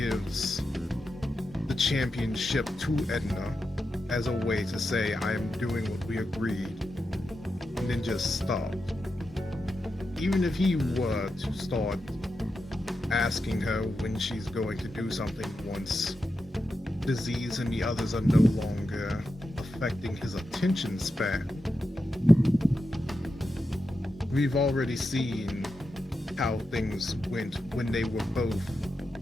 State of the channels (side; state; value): both; normal; correlation 0.89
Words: the championship to Edna as a way to say, I am doing what we agreed, and then just stop. Even if he were to start asking her when she's going to do something once disease and the others are no longer affecting his attention span. We've already seen how things went when they were both